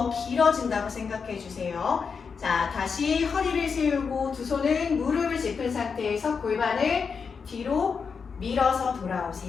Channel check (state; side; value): quieter; right; 5.7 dB